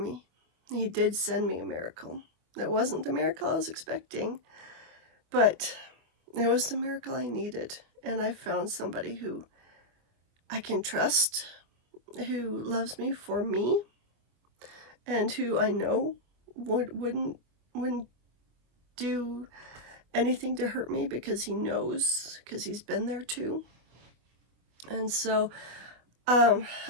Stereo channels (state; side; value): late; left; 25 ms